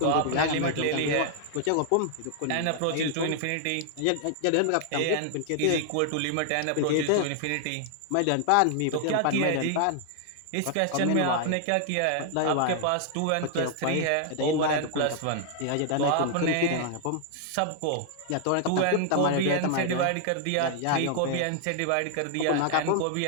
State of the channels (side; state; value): both; different; correlation 0.00